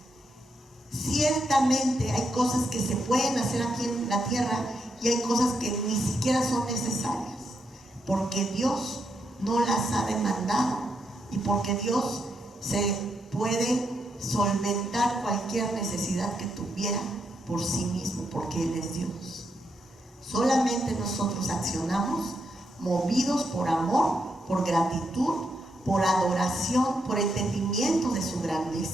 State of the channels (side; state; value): both; normal; correlation 0.81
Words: Ciertamente hay cosas que se pueden hacer aquí en la tierra y hay cosas que ni siquiera son necesarias, porque Dios no las ha demandado y porque Dios se puede solventar cualquier necesidad que tuviera por sí mismo, porque Él es Dios. Solamente nosotros accionamos movidos por amor, por gratitud, por adoración, por entendimiento de su